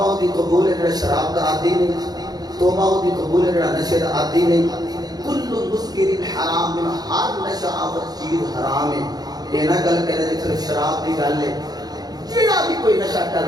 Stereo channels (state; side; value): late; left; 0.19 ms